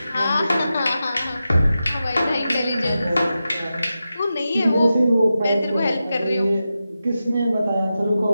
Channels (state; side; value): inverted; both; correlation -0.91